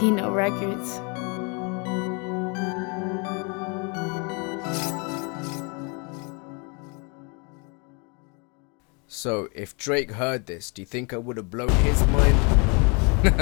Kino Records. So, if Drake heard this, do you think I would have blown his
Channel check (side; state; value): right; quieter; 33.0 dB